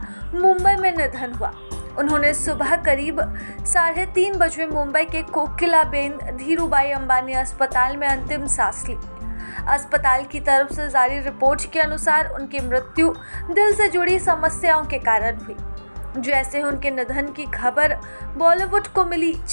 मुंबई में निधन हुआ। उन्होंने सुबह करीब 3:30 बजे मुंबई के कोकिलाबेन धीरूभाई अंबानी अस्पताल में अंतिम सांस ली। अस्पताल की तरफ से जारी रिपोर्ट के अनुसार उनकी मृत्यु दिल से जुड़ी समस्याओं के कारण हुई। जैसे उनके निधन की खबर बॉलीवुड को मिली,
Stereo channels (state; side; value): inverted; both; correlation -1.00